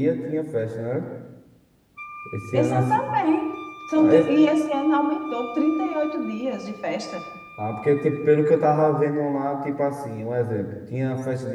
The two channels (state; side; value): identical; both; correlation 1.00